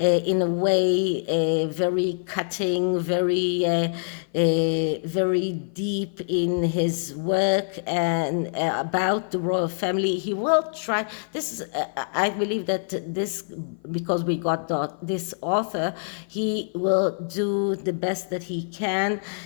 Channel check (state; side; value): silent; right; 55 dB below the other